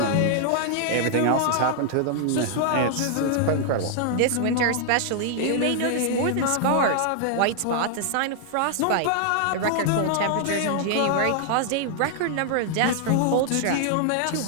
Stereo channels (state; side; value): different; both; correlation -0.01